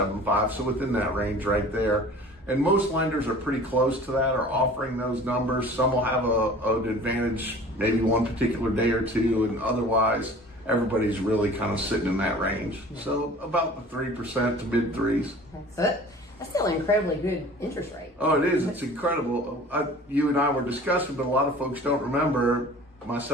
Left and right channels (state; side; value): normal; both; correlation 0.45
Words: So within that range right there. And most lenders are pretty close to that, are offering those numbers. Some will have an advantage maybe one particular day or two, and otherwise everybody's really kind of sitting in that range. So about the 3% to mid threes. That's still an incredibly good interest rate. Oh, it is. It's incredible. You and I were discussing, but a lot of folks don't remember,